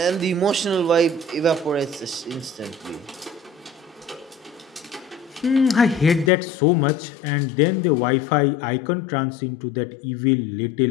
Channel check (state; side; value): drops out; right; at 6.3 s